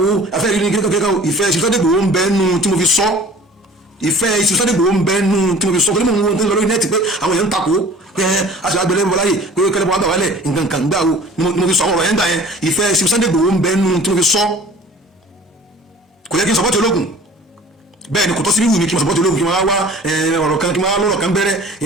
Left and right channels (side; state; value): both; normal; correlation 0.46